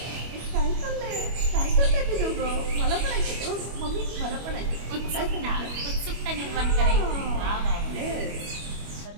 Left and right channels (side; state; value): left; late; 25 ms